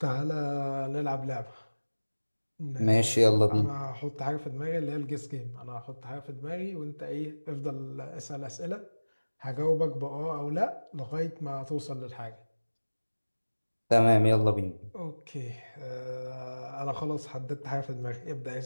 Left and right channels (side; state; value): both; inverted; correlation -1.00